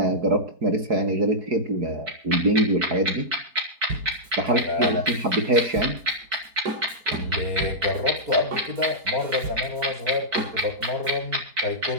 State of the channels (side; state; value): left; late; 4.6 ms